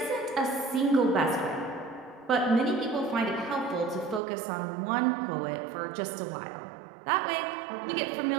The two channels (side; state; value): left; drops out; at 4.2 s